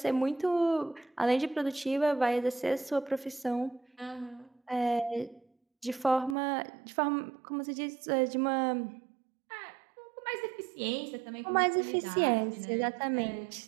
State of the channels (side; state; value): left; drops out; at 6.4 s